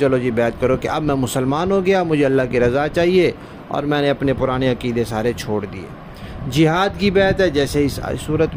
جی بیعت کرو کہ اب میں مسلمان ہو گیا، مجھے اللہ کی رضا چاہیے اور میں نے اپنے پرانے عقیدے سارے چھوڑ دیے۔ جہاد کی بیعت ہے جیسے اس صورت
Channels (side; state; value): both; identical; correlation 1.00